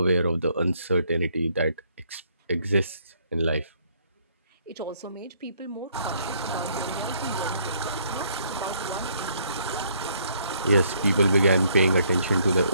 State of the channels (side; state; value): both; inverted; correlation -0.68